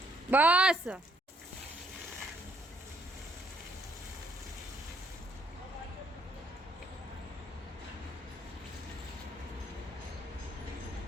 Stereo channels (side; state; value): both; normal; correlation 0.69